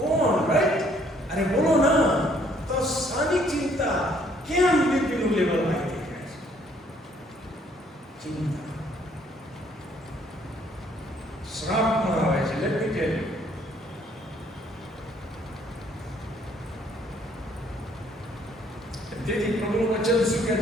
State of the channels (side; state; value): both; normal; correlation 0.64